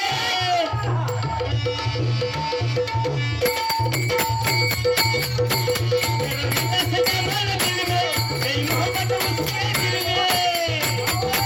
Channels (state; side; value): identical; both; correlation 1.00